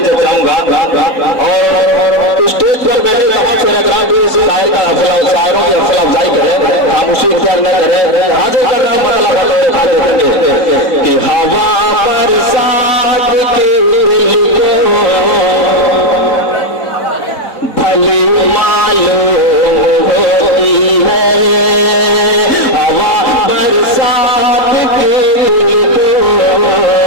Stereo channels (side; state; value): right; late; 4.0 ms